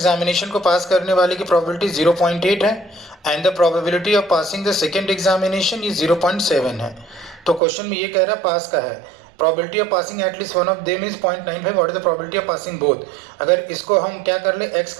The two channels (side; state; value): left; drops out; at 7.6 s